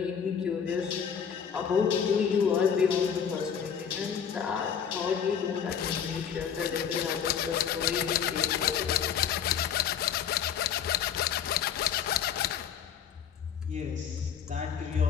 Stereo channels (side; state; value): right; quieter; 7.8 dB